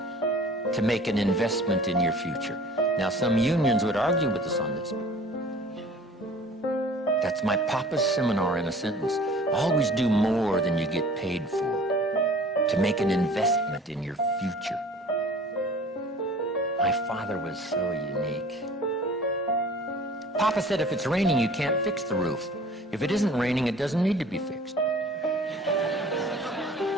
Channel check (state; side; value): normal; both; correlation 0.47